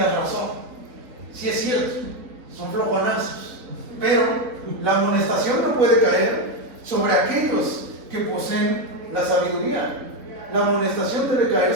razón, sí es cierto, son flojonazos, pero la amonestación no puede caer sobre aquellos que poseen la sabiduría. La amonestación debe caer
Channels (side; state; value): left; late; 3.9 ms